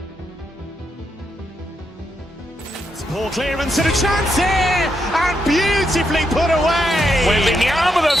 Ball clearance and a chance here, and beautifully put away. Wembanyama the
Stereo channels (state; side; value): normal; both; correlation 0.81